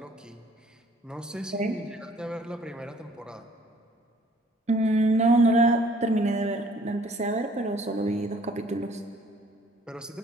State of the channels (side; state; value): both; normal; correlation 0.58